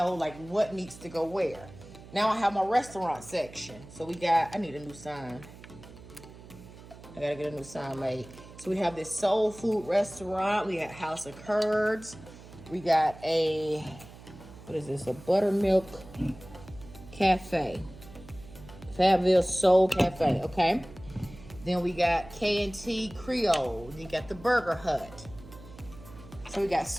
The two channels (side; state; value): right; noise; hum, 18 dB below the sound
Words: like what needs to go where. Now I have my restaurant section. So we got, I need a new sign. I gotta get a new sign made. So we have this soul food restaurant. We got House of Curds. We got a, what is this? A buttermilk cafe. Fabville Soul Cafe, okay? Then we got K&T Creole. You got the Burger Hut. So we got